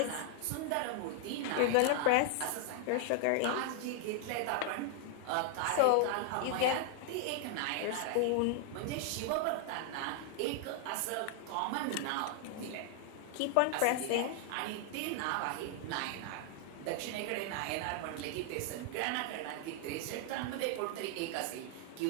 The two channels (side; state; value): both; different; correlation 0.00